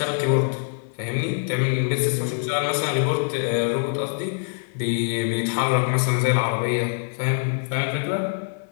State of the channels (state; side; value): silent; right; 60 dB below the other